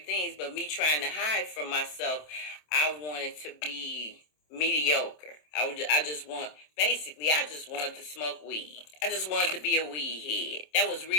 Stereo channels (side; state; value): right; late; 27 ms